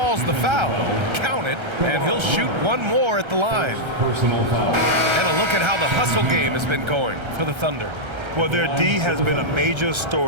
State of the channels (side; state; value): left; late; 1.3 ms